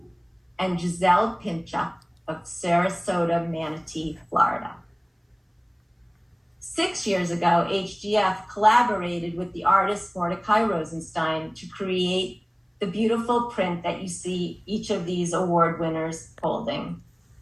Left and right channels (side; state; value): both; identical; correlation 1.00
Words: and Giselle Pinchuk of Sarasota, Manatee, Florida. 6 years ago, HGF collaborated with the artist Mordecai Rosenstein to create the beautiful print that you see each of these award winners holding.